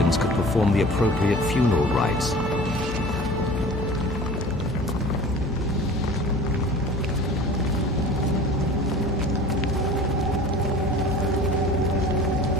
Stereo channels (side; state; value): left; noise; hum, 8 dB below the sound